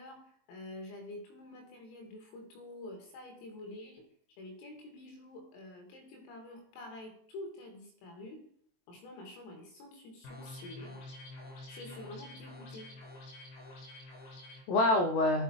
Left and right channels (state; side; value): late; right; 22 ms